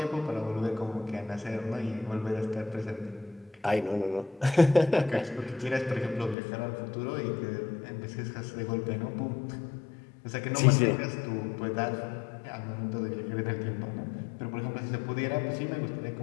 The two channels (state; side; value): drops out; right; at 6.4 s